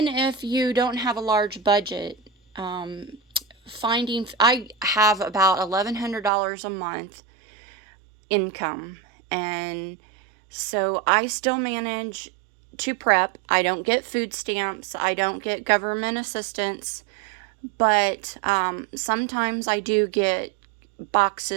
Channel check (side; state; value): left; drops out; at 6.3 s